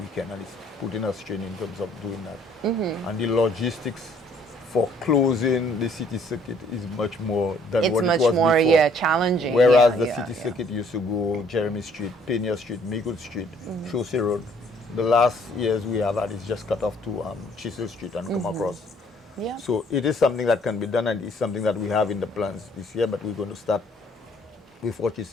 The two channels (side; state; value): both; normal; correlation 0.62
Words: and it's putting a strain in terms of doing that. And the logistics for closing the city circuit is much more than what it was before. It's much more, challenging. Whereas the city circuit used to go Jeremy Street, Pena Street, Maygood Street, Chaussee Road. The last years we have had is just cut off to Chisel Street and come across. Yeah. So it is something that can be done, and it's something that we have in the plans this year, but we're going to start with what